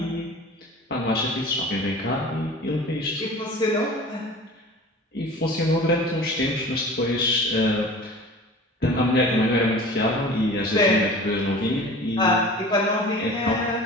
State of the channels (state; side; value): normal; both; correlation 0.40